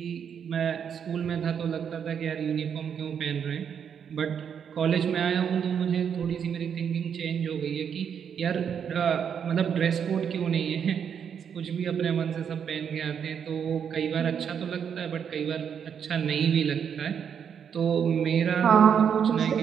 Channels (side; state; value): left; quieter; 7.7 dB